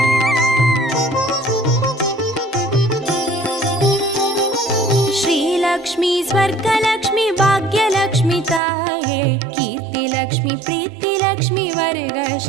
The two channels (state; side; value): drops out; left; at 8.6 s